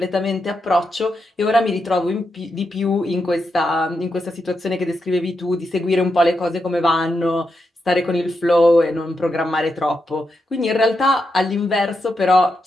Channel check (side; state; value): both; normal; correlation 0.85